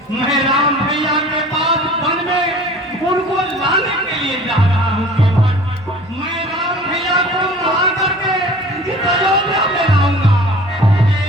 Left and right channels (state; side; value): normal; both; correlation 0.45